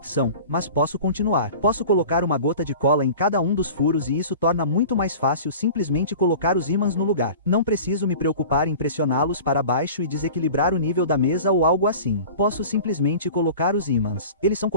mas posso continuar. Posso colocar uma gota de cola em cada um dos furos e isso torna muito mais fácil simplesmente colocar os ímãs no lugar. Não preciso me preocupar em pressioná-los para baixo e desequilibrar o nível da mesa ou algo assim. Posso simplesmente colocar os ímãs. Eles são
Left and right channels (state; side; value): inverted; both; correlation -0.39